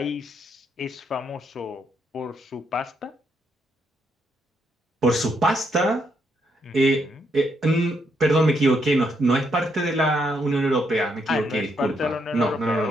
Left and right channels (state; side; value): normal; both; correlation 0.76